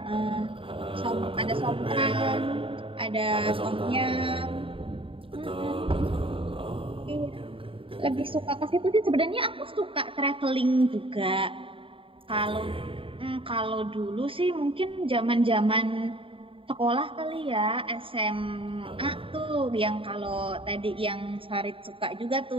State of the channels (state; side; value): late; left; 0.26 ms